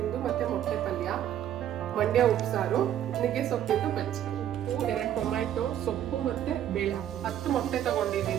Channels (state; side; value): quieter; left; 10.9 dB